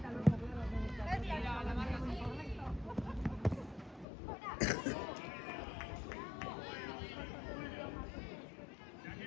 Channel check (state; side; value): drops out; right; at 4.0 s